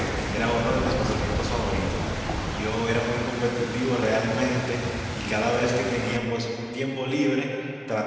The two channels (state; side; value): identical; both; correlation 1.00